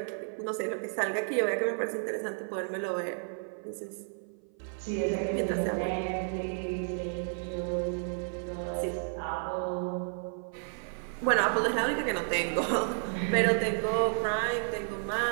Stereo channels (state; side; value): silent; left; 57 dB below the other